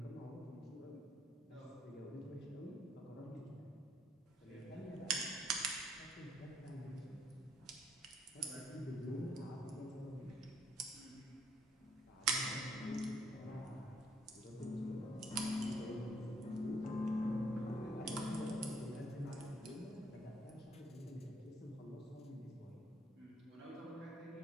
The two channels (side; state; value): both; normal; correlation 0.67